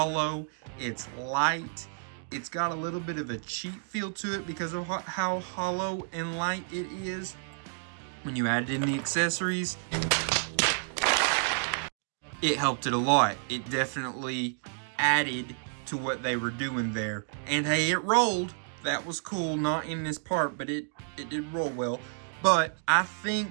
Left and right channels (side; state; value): left; silent; digital silence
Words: It's light. It's got a little bit of a cheap feel to it because of how hollow and light it is. When you added in the accessories, it helped it a lot. It definitely added to what they were doing there. And hey, it rolled. That was cool. Not in this part, but it did roll well. But I think